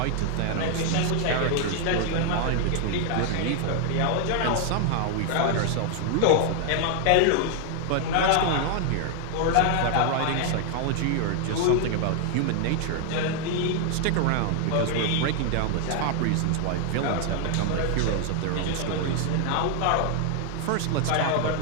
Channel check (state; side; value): different; both; correlation 0.00